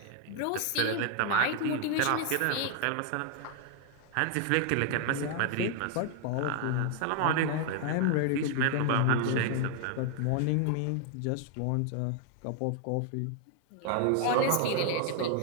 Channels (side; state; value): both; different; correlation 0.00